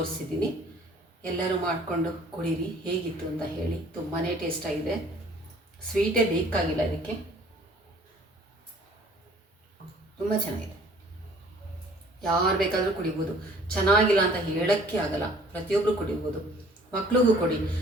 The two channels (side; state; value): both; normal; correlation 0.54